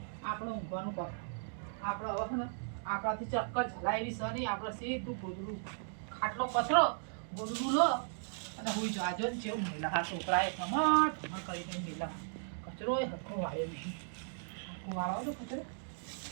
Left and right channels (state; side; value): silent; left; digital silence